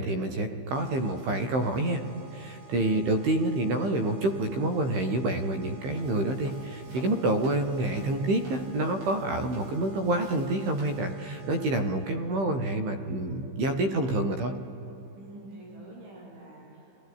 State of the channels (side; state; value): left; late; 15 ms